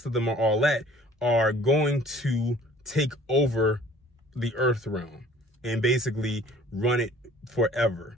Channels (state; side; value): normal; both; correlation 0.52